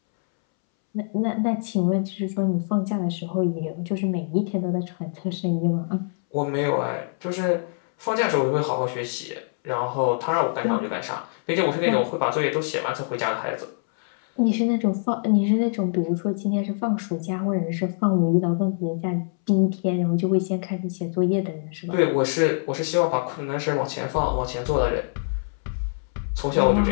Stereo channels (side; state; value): right; silent; 62 dB below the other